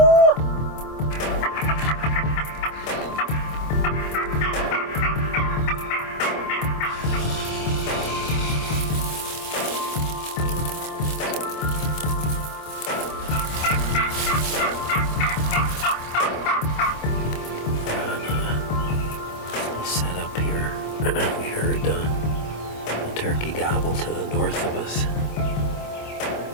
Set up here. We heard a turkey gobble to the north of us.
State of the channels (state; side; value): late; right; 26 ms